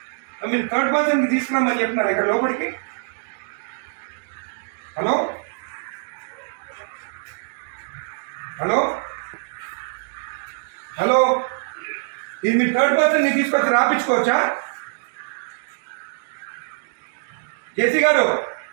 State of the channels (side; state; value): left; silent; digital silence